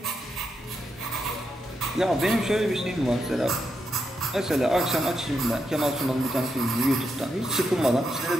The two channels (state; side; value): normal; both; correlation 0.83